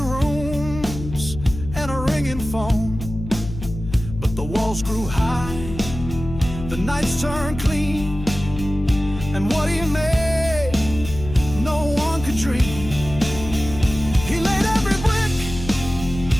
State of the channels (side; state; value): left; noise; hum, 10 dB below the sound